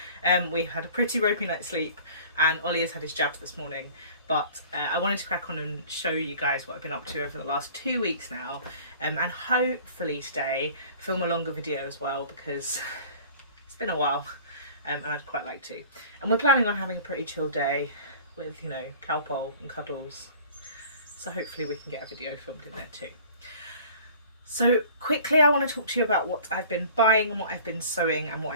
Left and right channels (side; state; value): both; inverted; correlation -0.47